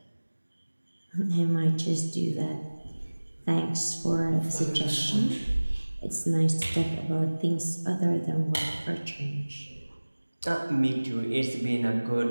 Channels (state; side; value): inverted; both; correlation -1.00